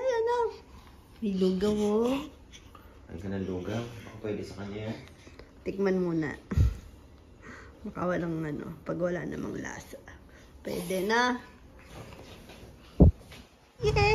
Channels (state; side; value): identical; both; correlation 1.00